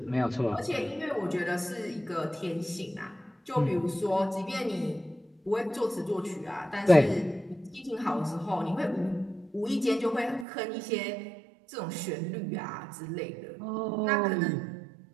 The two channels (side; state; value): left; drops out; at 10.5 s